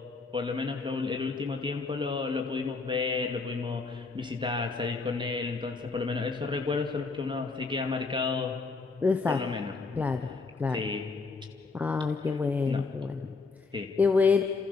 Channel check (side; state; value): right; quieter; 4.3 dB